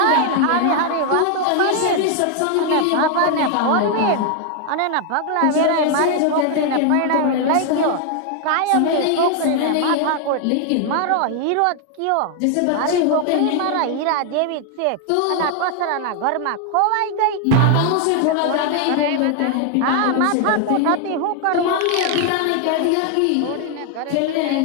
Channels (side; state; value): both; different; correlation 0.00